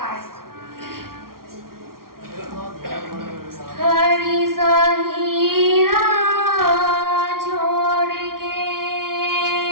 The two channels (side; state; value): left; late; 0.93 ms